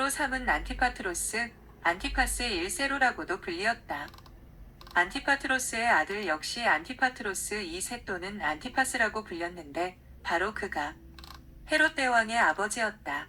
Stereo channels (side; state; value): both; identical; correlation 1.00